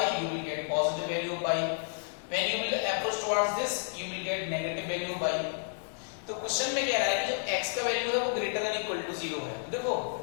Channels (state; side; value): silent; right; digital silence